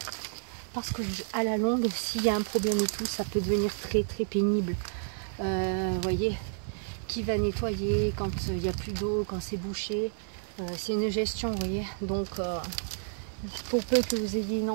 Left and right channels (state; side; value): silent; left; digital silence